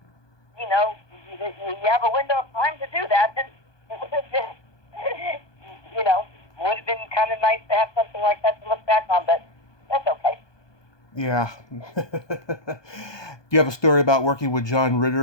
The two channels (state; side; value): late; right; 1.2 ms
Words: you have a window of time to do that, and it would have been, would have been kind of nice to have something like that to look back on, but that's okay. Yeah. Do you have a story about working with John